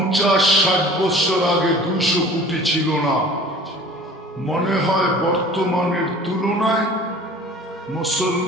বছর আগে 200 কোটি ছিল না। মনে হয় বর্তমানের তুলনায়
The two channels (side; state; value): both; normal; correlation 0.45